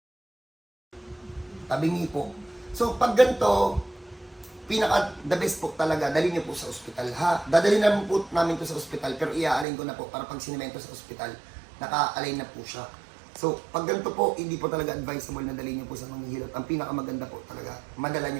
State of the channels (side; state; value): left; drops out; at 9.7 s